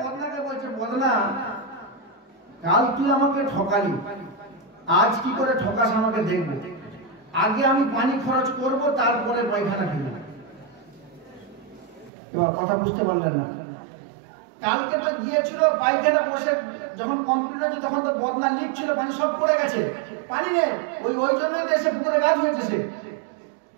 বদনাকে বলছে, বদনা, কাল তুই আমাকে ঠকালি, আজ কি করে ঠকাস আমাকে দেখবো। আগে আমি পানি খরচ করব, তারপরে পায়খানা ফেলবো। এবার কথা বুঝতে পারলেন না? কালকে তো গিয়েছিল পায়খানা বসে যখন কমপ্লিট হয়েছে তখন তো বদনা লিক ছিল, পানি সব পড়ে গেছে, পানি নেই, ওই জন্য এসে পুকুরে গাছ হয়েছে সে।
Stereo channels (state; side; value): drops out; left; at 12.1 s